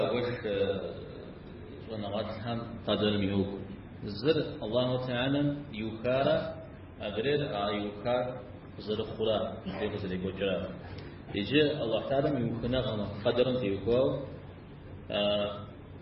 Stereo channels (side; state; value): both; identical; correlation 1.00